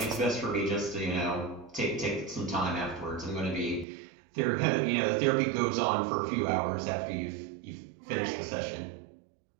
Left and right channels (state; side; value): drops out; left; at 3.9 s